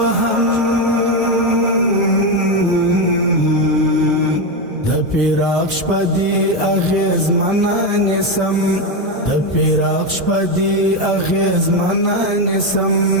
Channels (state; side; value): normal; both; correlation 0.10